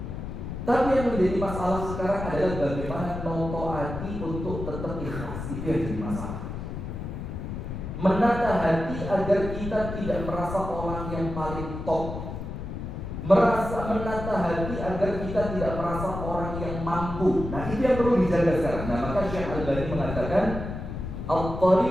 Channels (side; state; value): left; noise; rumble, 7 dB below the sound